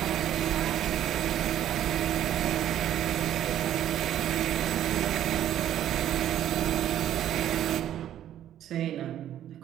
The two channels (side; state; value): left; quieter; 11.3 dB